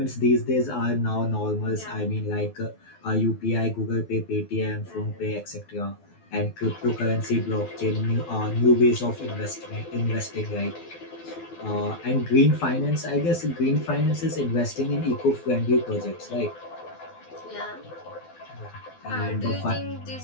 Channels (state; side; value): late; right; 12 ms